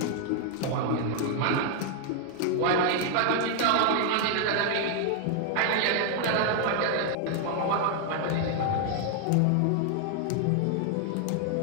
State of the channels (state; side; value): different; both; correlation 0.00